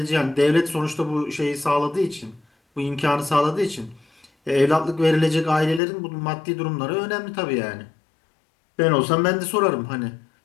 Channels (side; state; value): right; drops out; at 5.8 s